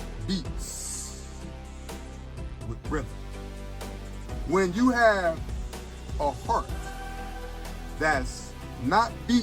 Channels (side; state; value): both; identical; correlation 1.00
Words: beats with rhythm. When you have a heart that's not